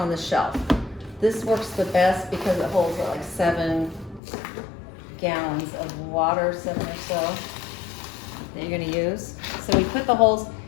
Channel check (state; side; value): drops out; right; at 4.2 s